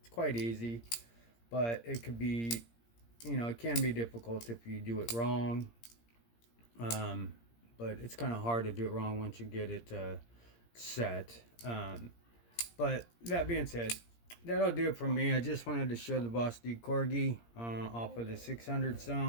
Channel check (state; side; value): late; right; 17 ms